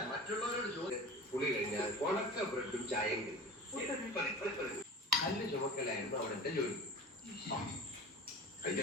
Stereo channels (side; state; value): both; normal; correlation 0.36